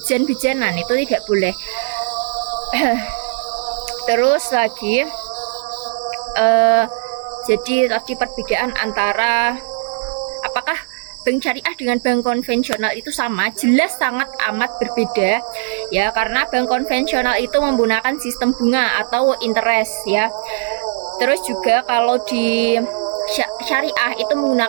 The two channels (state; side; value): silent; left; 65 dB below the other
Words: itu tidak boleh. Terus lagi jadi tadi perbedaan antara apakah bank syariah dengan bank konvensional itu sama, jelas sangat amat berbeda ya, karena bank konvensional itu menggunakan sistem bunga atau interest ya. Terus juga kalau di syariah itu